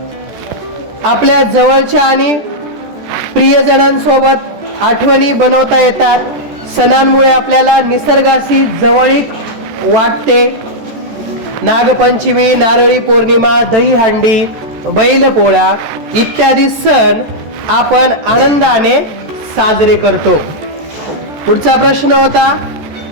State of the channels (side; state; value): left; late; 14 ms